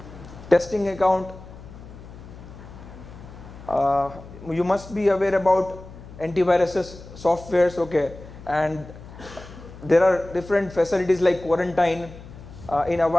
Testing account. You must be aware about antiviruses softwares, okay, and there are different facilities like quarantine. In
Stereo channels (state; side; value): noise; left; hum, 16 dB below the sound